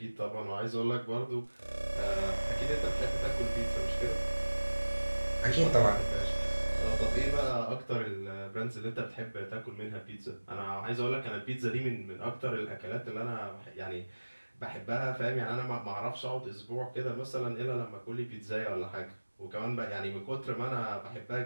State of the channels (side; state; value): both; inverted; correlation -1.00